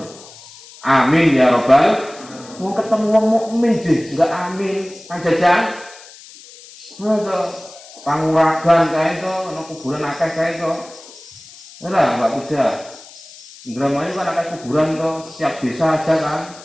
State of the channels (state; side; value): noise; left; hiss, 20 dB below the sound